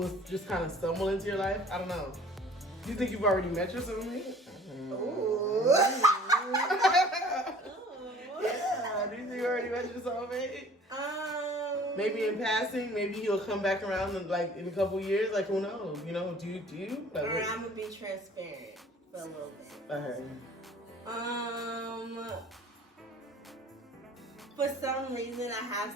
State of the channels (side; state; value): both; normal; correlation 0.50